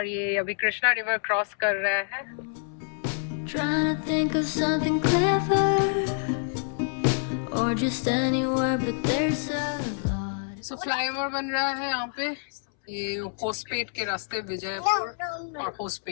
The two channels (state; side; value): silent; right; 60 dB below the other